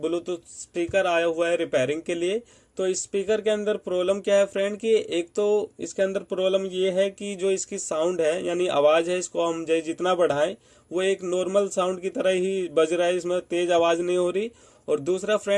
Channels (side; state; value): both; identical; correlation 1.00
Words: ब्लूटूथ स्पीकर आया हुआ है रिपेयरिंग के लिए। तो इस स्पीकर के अंदर प्रॉब्लम क्या है फ्रेंड कि एक तो इसके अंदर प्रॉब्लम ये है कि जो इसकी साउंड है यानी आवाज़ है, इसको हम जितना बढ़ाएं वो एक नॉर्मल साउंड की तरह ही बज रहा है, इसमें तेज आवाज़ नहीं हो रही। और दूसरा